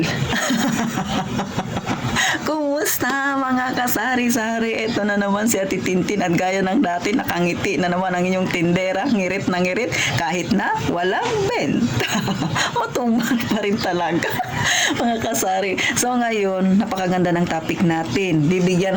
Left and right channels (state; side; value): identical; both; correlation 1.00